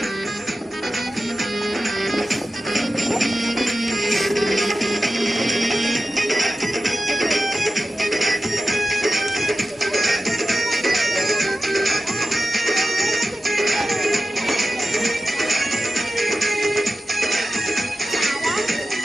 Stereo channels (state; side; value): normal; both; correlation 0.93